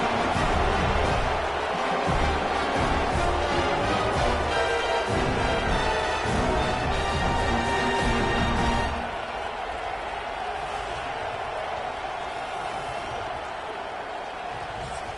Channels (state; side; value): identical; both; correlation 1.00